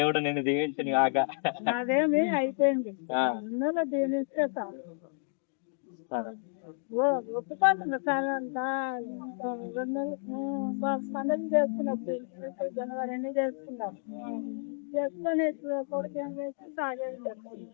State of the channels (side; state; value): right; silent; 56 dB below the other